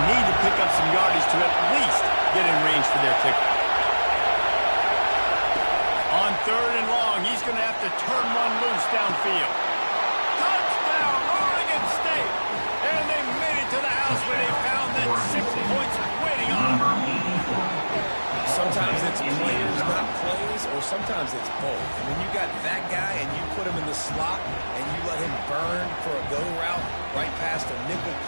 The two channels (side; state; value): both; inverted; correlation -1.00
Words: need to pick up some yardage to at least get in range for their kicker. On third and long, he's going to have to turn one loose downfield. Touchdown, Oregon State! And they made it to the house where they found that 6 points waiting on them. Sometimes it's players, not plays, or sometimes it's both. And when you got that guy and you put him in the slot and you let him burn for a go route right past a nickel